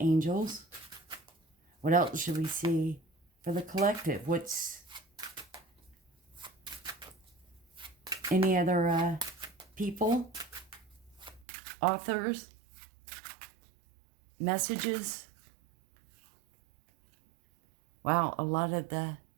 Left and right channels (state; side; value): drops out; left; at 11.5 s